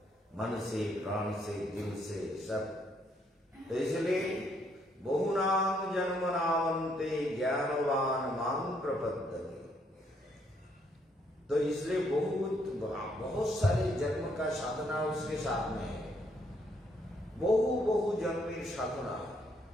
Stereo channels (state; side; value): normal; both; correlation 0.71